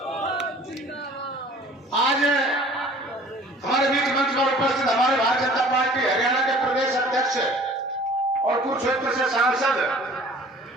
आज हमारे बीच मंच पर उपस्थित हमारे भारतीय जनता पार्टी हरियाणा के प्रदेश अध्यक्ष और कुरुक्षेत्र से सांसद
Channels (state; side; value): normal; both; correlation 0.49